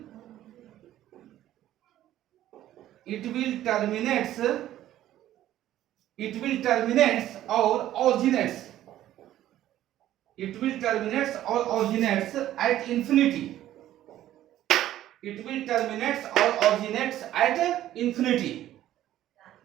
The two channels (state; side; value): quieter; left; 13.1 dB